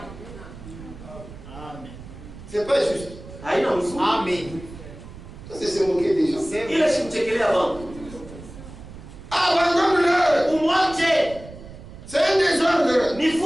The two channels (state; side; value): noise; right; rumble, 15 dB below the sound